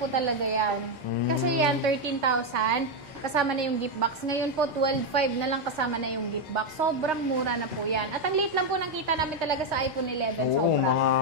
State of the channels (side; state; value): both; normal; correlation 0.04